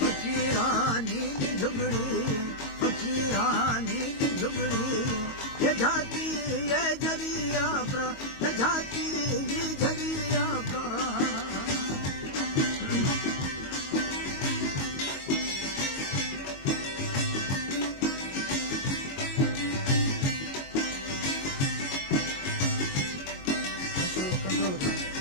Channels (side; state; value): right; late; 22 ms